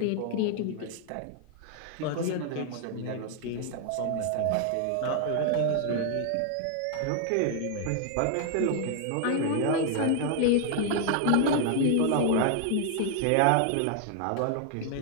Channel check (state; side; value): different; both; correlation 0.00